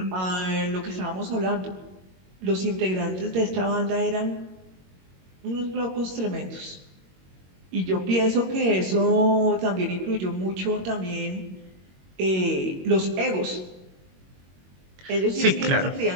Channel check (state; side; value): late; left; 22 ms